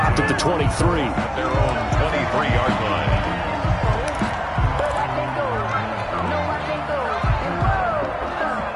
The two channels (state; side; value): identical; both; correlation 1.00